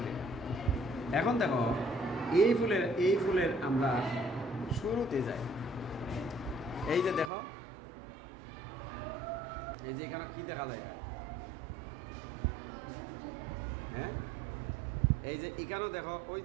এখন দেখো এই ফুলের আমরা শুরুতে যাই। এই যে দেখো, এই যে এখানে কি দেখা যায়? হ্যাঁ, এই যে এখানেও দেখো, ওই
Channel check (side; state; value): left; drops out; at 7.3 s